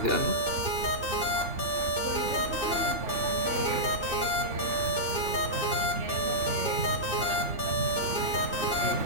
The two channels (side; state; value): left; late; 2.6 ms